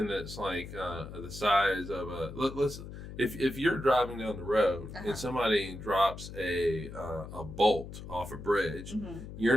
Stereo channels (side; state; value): left; noise; hum, 11 dB below the sound